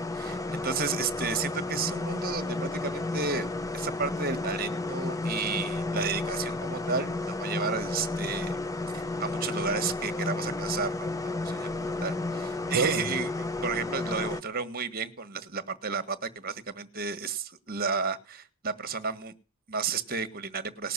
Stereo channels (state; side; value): normal; both; correlation 0.27